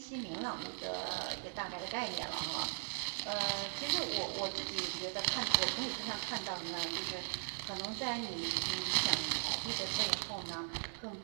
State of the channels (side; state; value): left; silent; 52 dB below the other